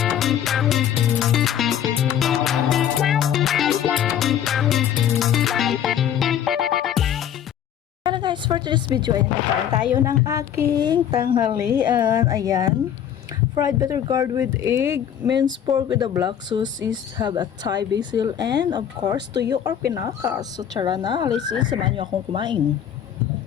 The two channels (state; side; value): quieter; right; 9.6 dB